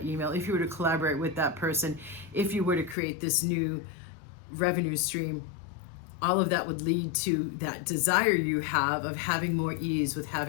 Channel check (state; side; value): drops out; right; at 3.0 s